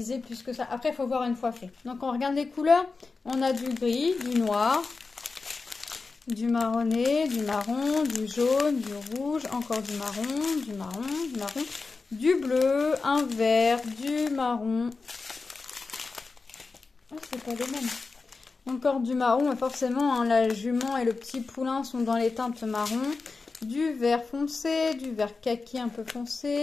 plus que ça. Après, il faut voir une fois fait. Donc, on regarde les couleurs. On a du gris, du noir, du marronné, du marron, du jaune, du rouge, encore du marron, du marron, du marron, du bleu, un vert, du marron. Oh, c'est pas les mêmes. Encore du marron, mais forcément, hein, la jument et le petit poulain sont dans les teintes marron. Du vert foncé, du vert kaki un peu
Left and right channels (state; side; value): quieter; right; 4.2 dB